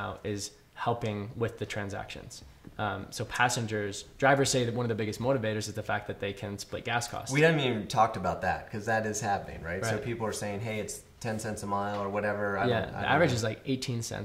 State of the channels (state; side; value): identical; both; correlation 1.00